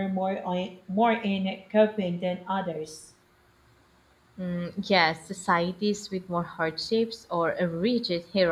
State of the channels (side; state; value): both; identical; correlation 1.00